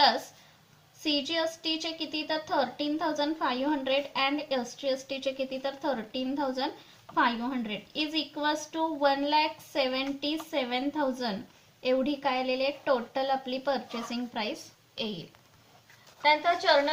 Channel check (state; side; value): identical; both; correlation 1.00